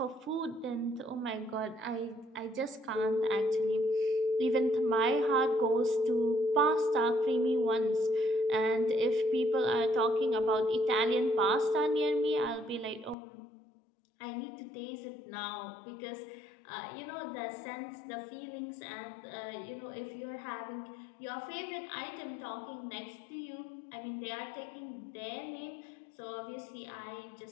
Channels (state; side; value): drops out; right; at 13.2 s